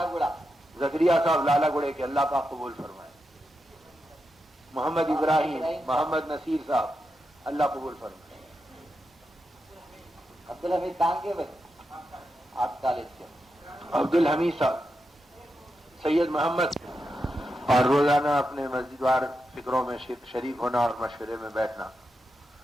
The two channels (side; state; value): both; normal; correlation 0.87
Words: زکریا صاحب لالا گڑے کے اللہ پاک قبول فرمائے. محمد ابراہیم، محمد نصیر صاحب اللہ قبول فرمائے. عبدالحمید ٹانگے بھائی آپ کالج کے عبد الحمید صاحب، سید محمد. اور روزانہ اپنے مسجد وار فکروں میں شریک ہونا اور مشورے میں بیٹھنا